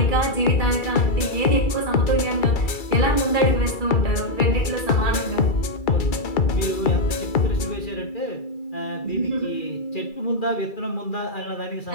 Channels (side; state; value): right; late; 2.3 ms